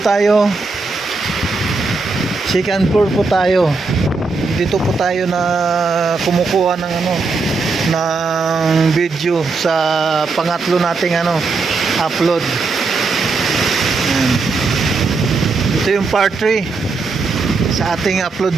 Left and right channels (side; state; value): left; quieter; 4.0 dB